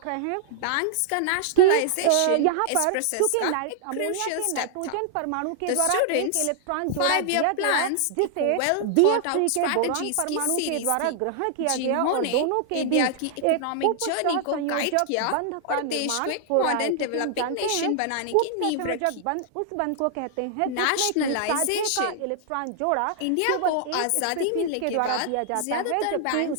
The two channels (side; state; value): both; different; correlation -0.01